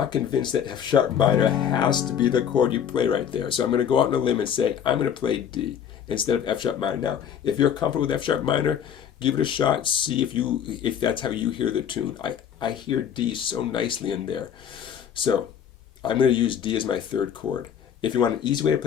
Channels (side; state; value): right; quieter; 8.7 dB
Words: convinced that F sharp minor has to be the chord you play right there. So I'm going to go out on a limb and say I'm going to play D. instead of F sharp minor. Now, if you're comfortable with F sharp minor, give it a shot. See if that's how you hear the tune. I hear D so nicely in there. So I'm going to use D as my third chord. If you want an easy way to